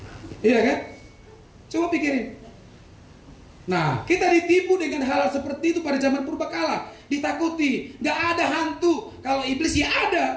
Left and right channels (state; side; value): identical; both; correlation 1.00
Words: Iya kan? Coba pikirin. Nah, kita ditipu dengan hal seperti itu pada zaman purbakala. Ditakuti, gak ada hantu. Kalau iblis ya